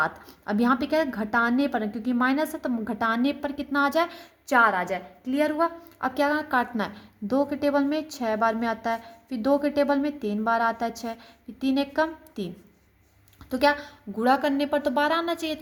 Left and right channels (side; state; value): both; identical; correlation 1.00